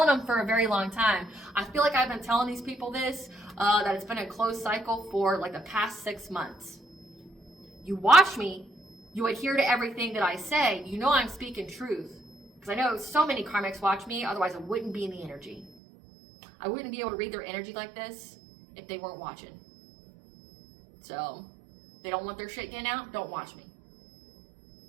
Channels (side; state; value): left; drops out; at 15.7 s